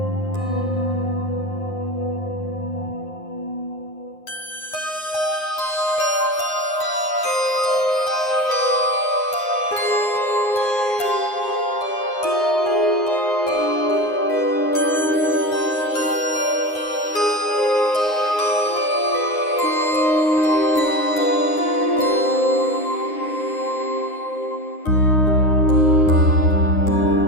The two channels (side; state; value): right; late; 9.7 ms